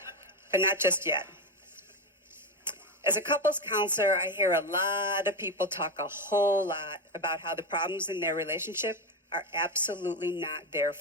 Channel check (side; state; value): both; normal; correlation 0.14